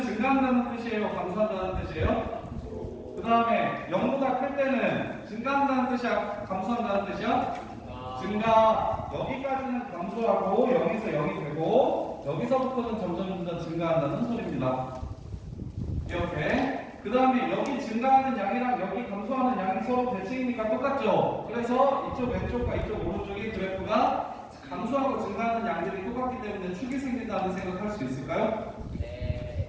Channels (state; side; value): identical; both; correlation 1.00